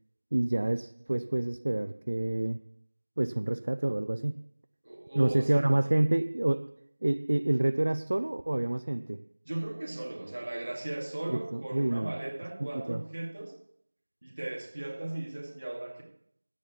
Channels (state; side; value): inverted; both; correlation -1.00